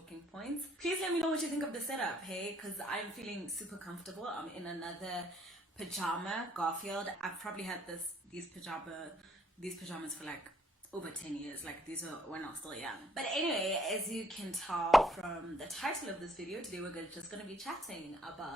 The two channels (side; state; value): both; normal; correlation 0.66